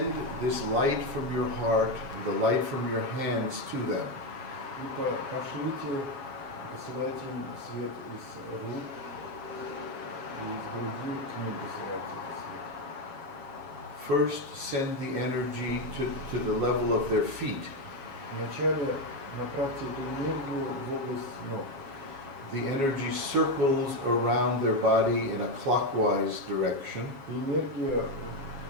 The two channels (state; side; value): late; left; 7.3 ms